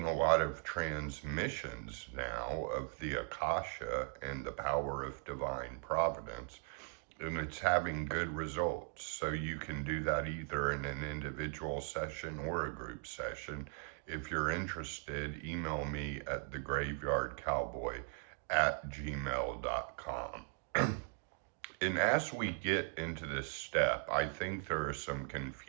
a lot of transmissions now of the Akasha and the power of divine providence, and it's having good results. So you can do that either in an individual session or a group session. If you're interested, email me at thegraveyardcowboy@gmail.com. And as we get into this step, I think there are some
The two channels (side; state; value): left; silent; 52 dB below the other